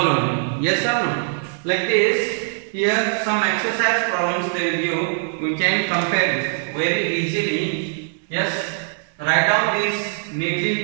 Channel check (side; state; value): left; silent; digital silence